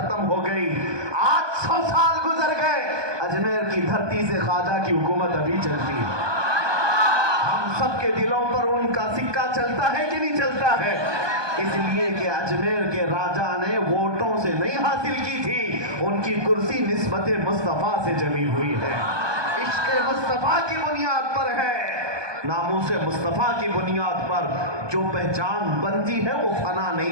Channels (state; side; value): late; left; 1.2 ms